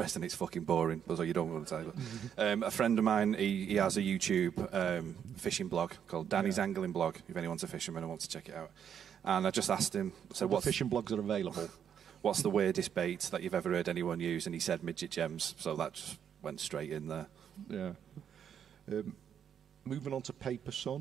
it's fucking boring, so you don't want to tell you. A friend of mine, he has a YouTube fishing blog called Danny's Angling Blog, if anyone's a fisherman and wants to check it out. And I just asked him, so what fishing blogs are available? What's the weirdest bait that you've ever heard anyone use? And he said midget gems, so that just went straight in there. Yeah. Moving on to Paper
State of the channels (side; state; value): left; quieter; 8.5 dB